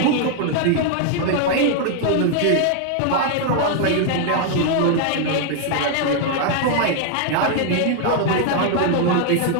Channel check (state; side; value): different; both; correlation 0.00